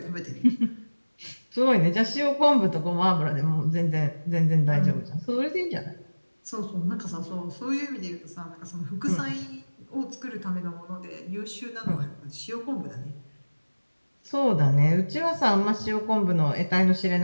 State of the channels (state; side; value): inverted; both; correlation -1.00